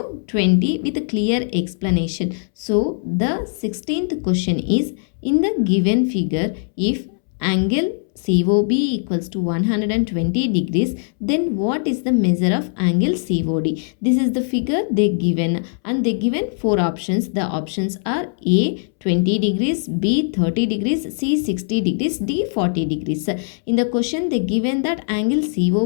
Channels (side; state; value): right; silent; 66 dB below the other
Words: 20 with a clear explanation. So the 16th question is, in the given figure, if angle COB equals to 120 degrees, then what is the measure of angle COD? This is the figure they given, and they given four options. The options are A 20 degrees, B 30 degrees, C 60 degrees, D 40 degrees. In the question they given that angle